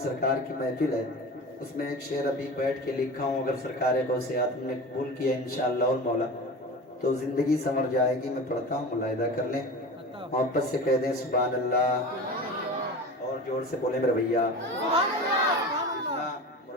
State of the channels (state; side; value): normal; both; correlation 0.32